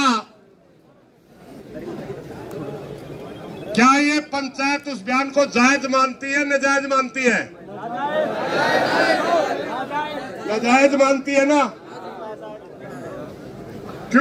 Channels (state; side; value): identical; both; correlation 1.00